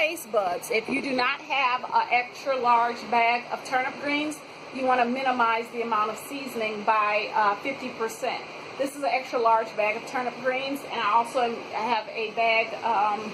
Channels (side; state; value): both; identical; correlation 1.00